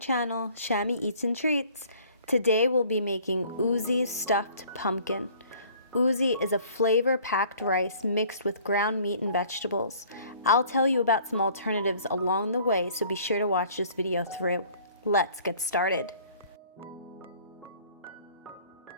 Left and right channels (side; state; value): both; inverted; correlation -0.53